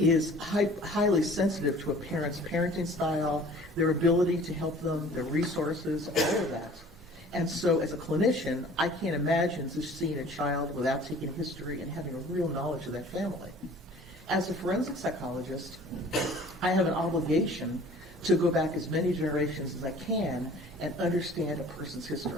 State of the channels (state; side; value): normal; both; correlation 0.48